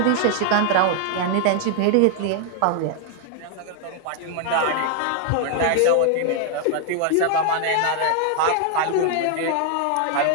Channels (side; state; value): both; different; correlation 0.00